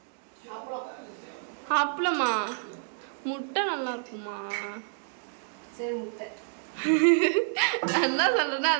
அப்பளமா முட்டை நல்லா இருக்குமா? சரி முட்டை என்ன சொல்கிறேன்னா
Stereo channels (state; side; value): silent; left; digital silence